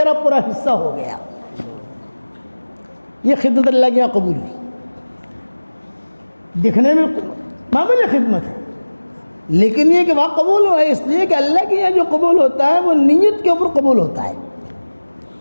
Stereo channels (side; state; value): both; inverted; correlation -1.00